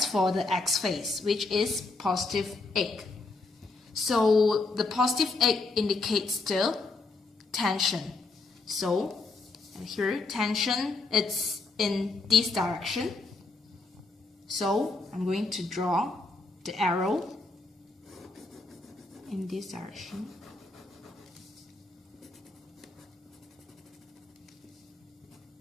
for the x phase, which is positive 8. So the positive 8 indicates the tension. So here tension, it's in this direction. So I'm going to draw the arrow in this direction.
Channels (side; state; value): right; quieter; 3.6 dB